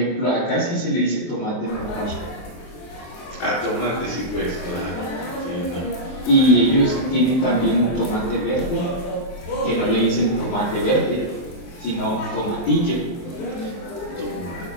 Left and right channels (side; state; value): right; late; 23 ms